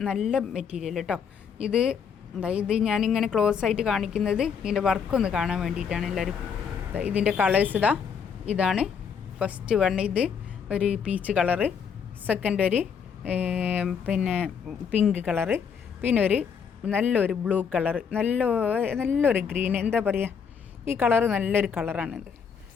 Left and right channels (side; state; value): right; quieter; 6.8 dB